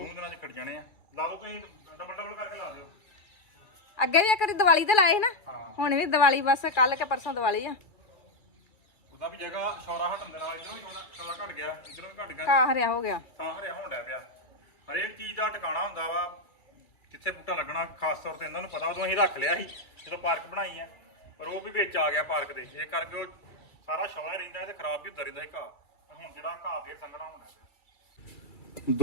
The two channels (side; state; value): right; late; 2.3 ms